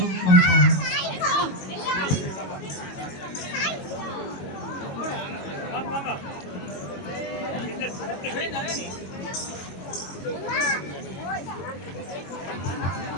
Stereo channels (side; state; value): right; late; 21 ms